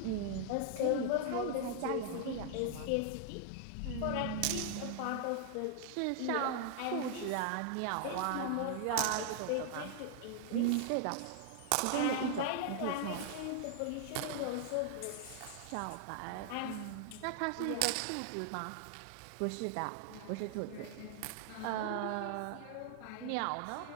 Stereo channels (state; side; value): different; both; correlation 0.00